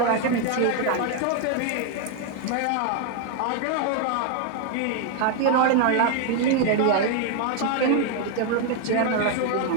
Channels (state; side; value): different; both; correlation 0.00